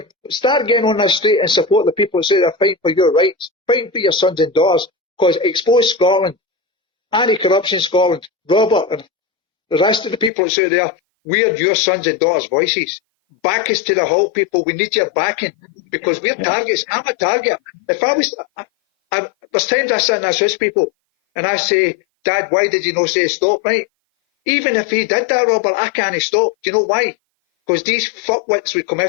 start getting on the street and support the people that say they're fighting for your rights, fighting for your sons and daughters, because Expose Scotland, Anti-Corruption Scotland, Robert and the rest of the people that say there, we're your sons and daughters' voices. Back us to the halt, people. We need your backing because we're targets. I'm a target. If I was, there's times I sit and I assist people and I say, Dad, why did you not say stop, right? Even if he did that, Robert, I can't stop. Do you know why? because these fuckwits would come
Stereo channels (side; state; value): right; drops out; at 10.3 s